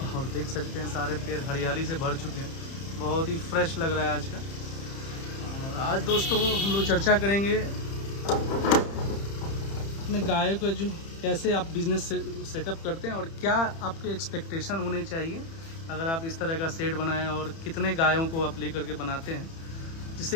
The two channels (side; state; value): right; late; 30 ms